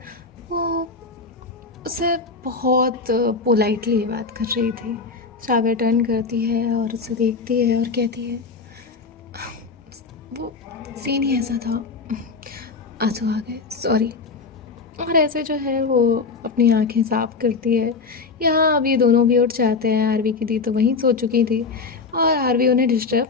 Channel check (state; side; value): quieter; right; 4.5 dB